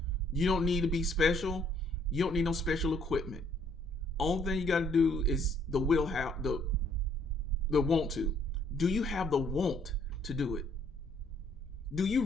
You don't need to be special. You don't need no special equipment. Only thing you got to do is the want to. Do you have the want to do it? Do you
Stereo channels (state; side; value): noise; left; rumble, 22 dB below the sound